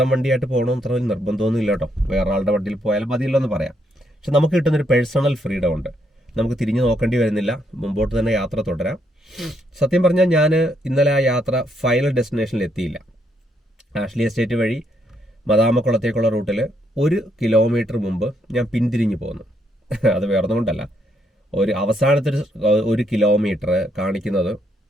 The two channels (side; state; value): both; normal; correlation 0.74